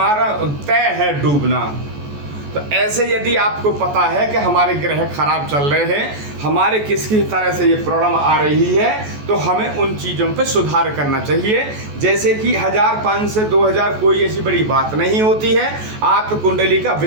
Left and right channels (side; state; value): left; late; 14 ms